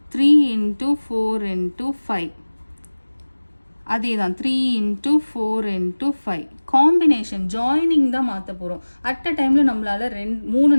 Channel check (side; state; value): both; inverted; correlation -1.00